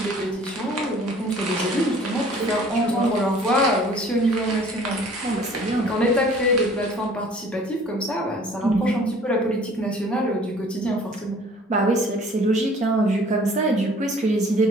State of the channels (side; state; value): both; normal; correlation 0.52